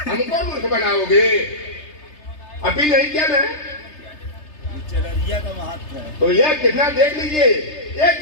हमको मूर्ख बनाओगे? अपील नहीं किया ना का महत्व है तो यह कितना देख लीजिए, ये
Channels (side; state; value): right; late; 3.3 ms